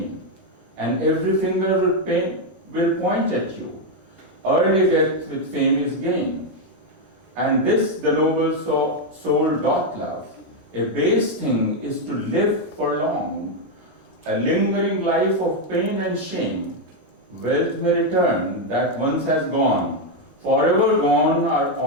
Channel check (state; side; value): normal; both; correlation 0.03